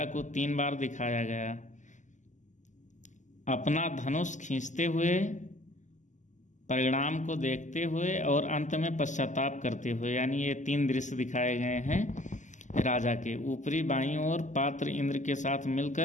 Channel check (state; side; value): late; right; 0.36 ms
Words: को 3 बार दिखाया गया, अपना धनुष खींचते हुए, परिणाम को देखते हुए और अंत में पश्चाताप करते हुए। यानी ये 3 दृश्य दिखाए गए हैं राजा के। ऊपरी बाईं ओर पात्र इंद्र के साथ